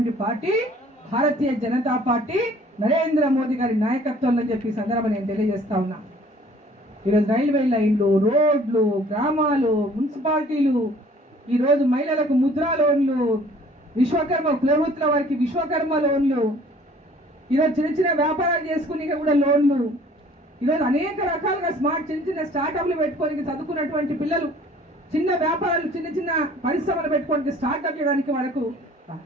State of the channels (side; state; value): both; normal; correlation 0.54